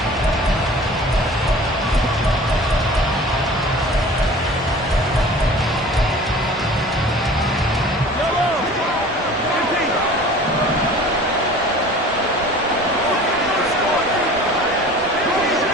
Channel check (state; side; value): normal; both; correlation 0.44